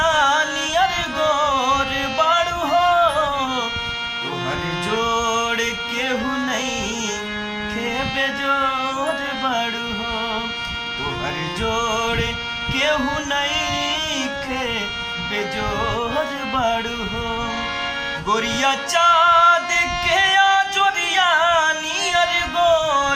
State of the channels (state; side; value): identical; both; correlation 1.00